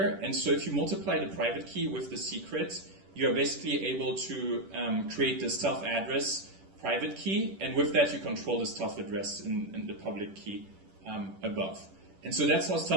and so if you multiply the private key with the secret, you are basically able to create the stealth address private key, and with that you control the stealth address in the public key above. And so that's how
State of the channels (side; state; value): left; late; 10 ms